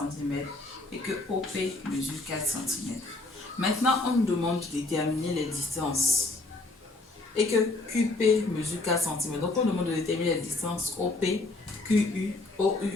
et que OP mesure 4 cm. Maintenant, on nous demande de déterminer les distances et que QP mesure 4 cm. Donc, on demande de déterminer les distances OP, QU, OU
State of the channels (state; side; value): quieter; right; 3.1 dB